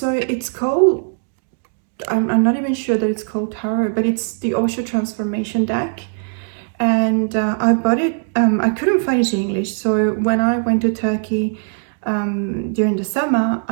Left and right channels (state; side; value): silent; left; digital silence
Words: it's called, I'm not even sure that it's called tarot, but it's the Osho Transformation deck. And I bought it, I couldn't find it in English. So when I went to Turkey during the summer,